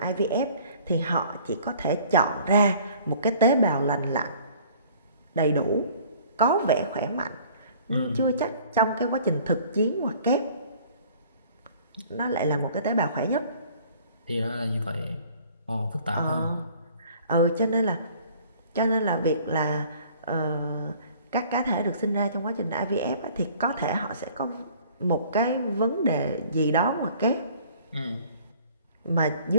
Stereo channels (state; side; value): inverted; both; correlation -0.53